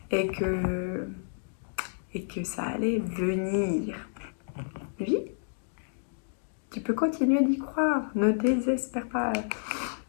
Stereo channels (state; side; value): silent; right; digital silence